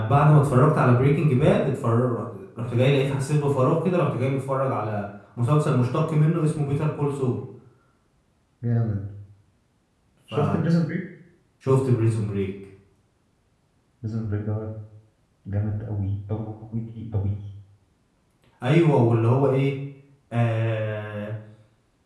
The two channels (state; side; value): identical; both; correlation 1.00